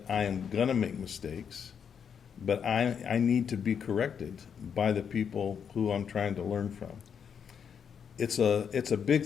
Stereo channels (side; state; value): right; quieter; 7.4 dB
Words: I am going to make mistakes, but I need to be corrected by the people who I'm trying to learn from. It's a big